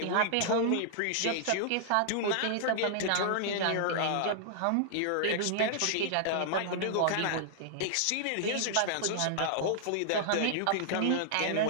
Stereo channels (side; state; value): both; different; correlation -0.01